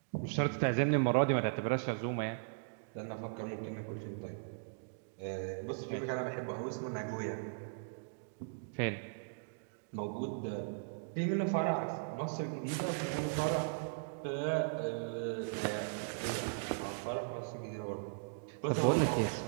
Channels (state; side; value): silent; left; digital silence